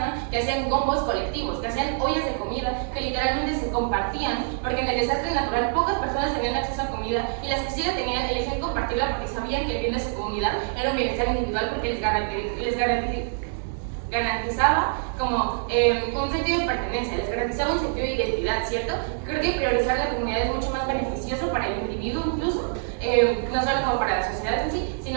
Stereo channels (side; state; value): left; silent; digital silence